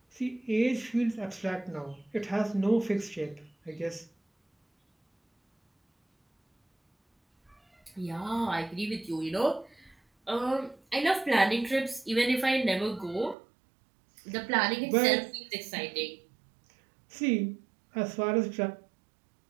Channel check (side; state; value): left; drops out; at 13.4 s